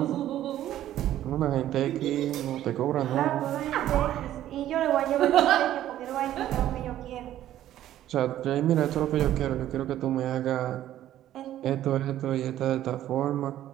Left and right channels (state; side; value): quieter; left; 12.6 dB